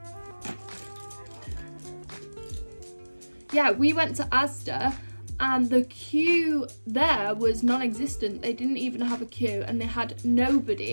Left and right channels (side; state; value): both; inverted; correlation -1.00